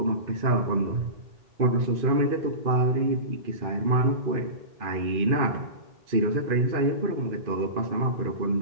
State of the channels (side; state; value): left; late; 2.5 ms